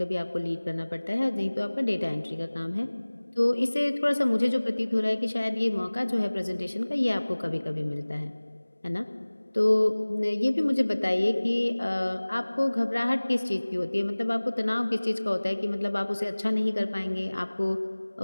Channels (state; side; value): inverted; both; correlation -1.00